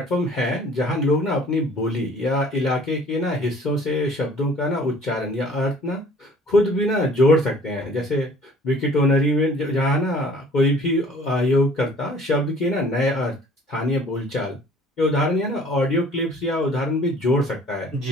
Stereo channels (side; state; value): both; normal; correlation 0.52